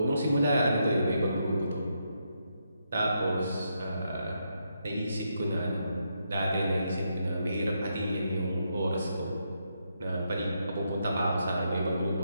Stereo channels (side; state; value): both; inverted; correlation -0.80